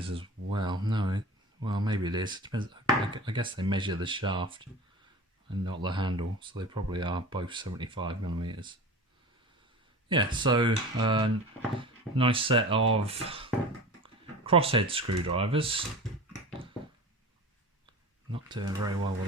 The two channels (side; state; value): both; normal; correlation 0.35